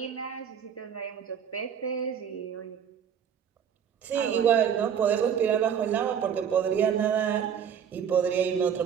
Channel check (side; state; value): left; quieter; 8.2 dB